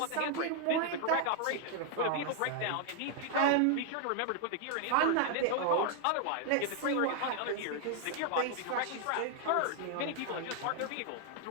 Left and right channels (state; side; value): different; both; correlation 0.00